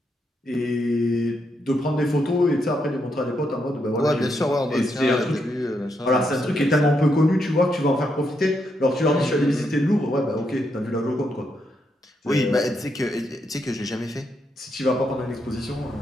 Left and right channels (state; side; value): normal; both; correlation 0.80